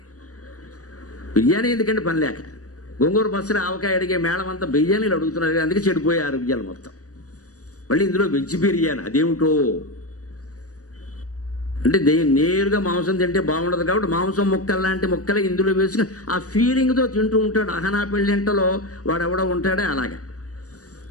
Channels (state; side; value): late; right; 0.66 ms